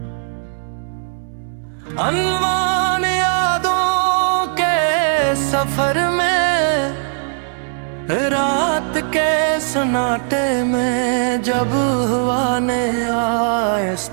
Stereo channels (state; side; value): silent; left; 67 dB below the other